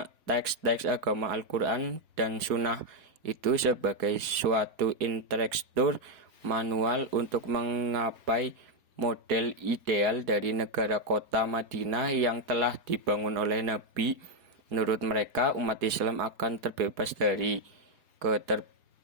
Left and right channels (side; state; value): left; late; 4.2 ms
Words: teks-teks agama Al-Quran dan Sunnah itu sebagai suatu instruktur manual untuk menggapai model ideal dari negara kota Madinah yang telah dibangun oleh Nabi. Menurut mereka, umat Islam akan terbebas dari